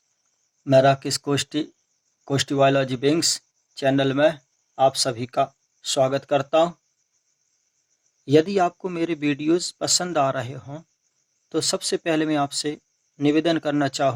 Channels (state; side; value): identical; both; correlation 1.00